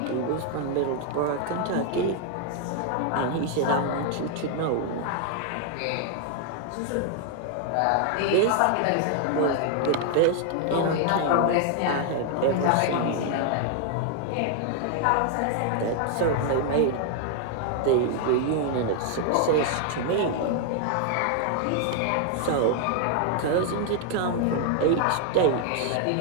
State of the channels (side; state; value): both; different; correlation 0.00